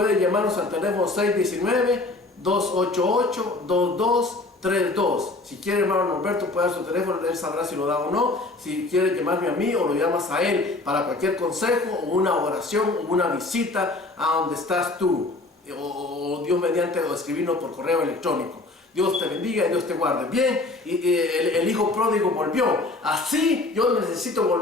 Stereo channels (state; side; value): quieter; right; 3.1 dB